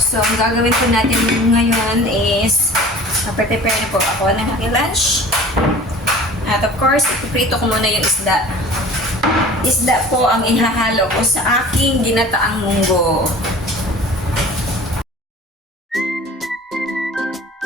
ang gagawin po natin ngayon is prepare na po ako ng aking lunch. At of course, ipiprito ko muna yung isda. Isda po ang ihahalo ko sa aking ginataang munggo.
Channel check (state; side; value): normal; both; correlation 0.43